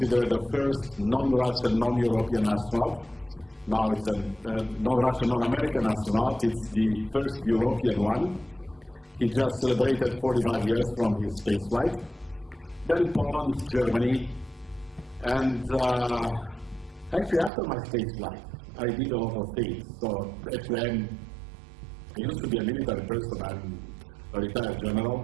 the first non-Russian, non-European astronaut. Now it's a non-Russian, non-American astronaut. It's the first European one. He just celebrated 45 years from his space flight. Then Poland, Germany, and actually, after my space flight, I did a lot of things. So actually, I used to be a military person. I'm a retired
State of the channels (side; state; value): left; drops out; at 17.5 s